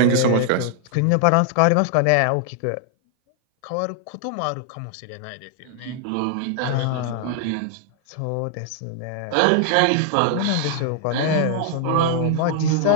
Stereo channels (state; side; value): different; both; correlation 0.00